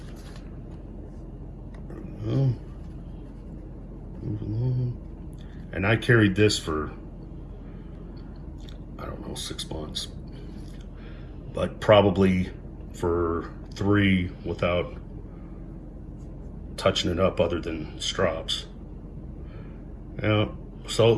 Move along. And I carried this for, I don't know, 6 months. but probably for 3 without touching it up other than strops. Yeah, so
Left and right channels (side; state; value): both; identical; correlation 1.00